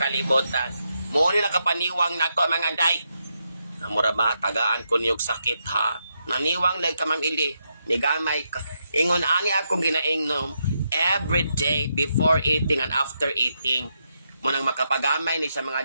Muna na kapaniwang na to, mga day. Namura ba, tagaan ko niyog sakit, ha? Naniwang lang ka, Ma'am Ili. Nigamay ka. Ingon, ani akong ginaingnom every day before eating and after eating. Munang makapagamay ni sa mga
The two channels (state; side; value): inverted; both; correlation -0.82